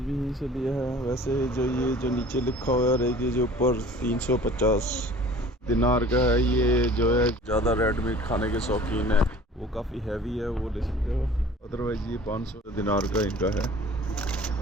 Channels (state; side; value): normal; both; correlation 0.47